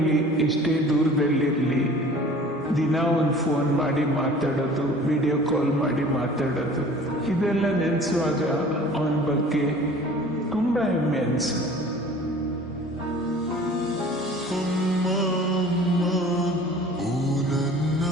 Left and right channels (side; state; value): both; normal; correlation 0.46